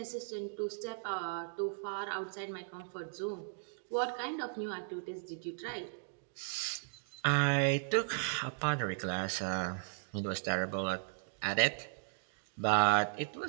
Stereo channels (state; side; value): silent; left; digital silence